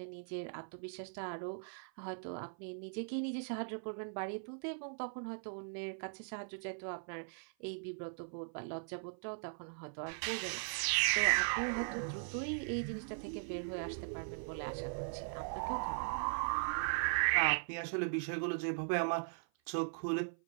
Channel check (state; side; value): silent; left; 51 dB below the other